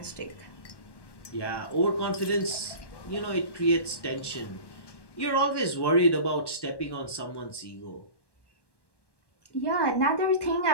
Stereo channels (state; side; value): late; right; 1.1 ms